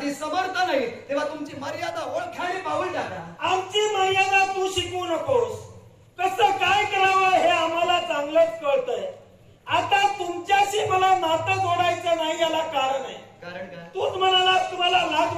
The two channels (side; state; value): both; identical; correlation 1.00